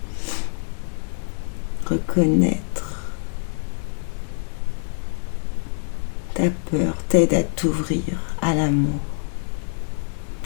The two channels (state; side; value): silent; right; 62 dB below the other